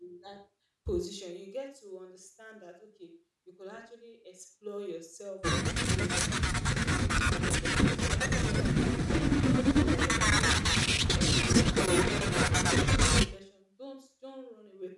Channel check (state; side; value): identical; both; correlation 1.00